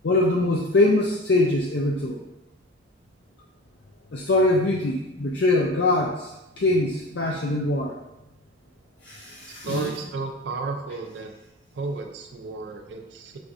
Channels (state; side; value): normal; both; correlation 0.34